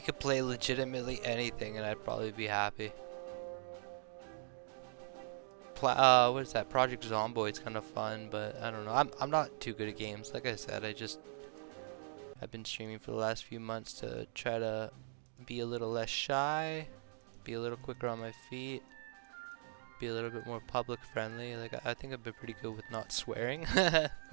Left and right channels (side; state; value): left; silent; digital silence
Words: could play legitimately anything and I'd probably be happy. What is that? Project Zomboid's kind of fun, but I don't know. I'm not too good at games. Like I said, I've been streaming for the last few months to try to be a little less shy. Be a little quicker on my feet, be a little bit more public friendly. Like I think I've been pretty good with not swearing,